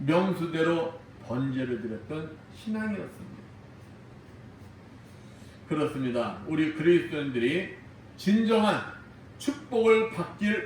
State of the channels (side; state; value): both; identical; correlation 1.00